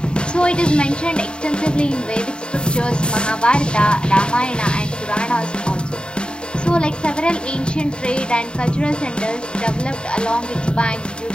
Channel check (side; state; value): right; late; 0.051 ms